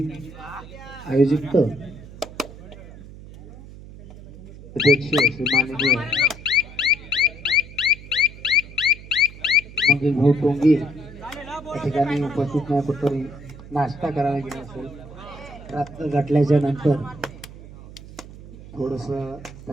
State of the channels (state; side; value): noise; right; hum, 16 dB below the sound